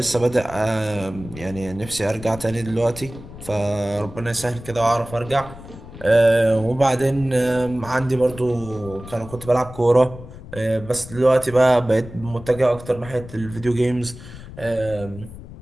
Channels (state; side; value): noise; left; rumble, 15 dB below the sound